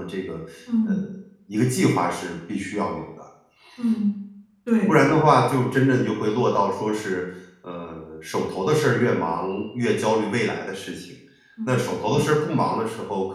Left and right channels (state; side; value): identical; both; correlation 1.00